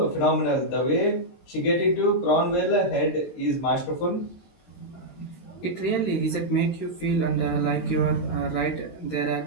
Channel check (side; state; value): right; late; 23 ms